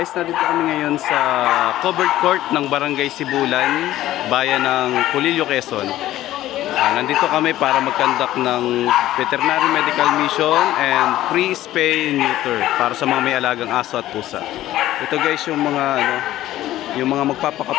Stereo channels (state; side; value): quieter; right; 14.4 dB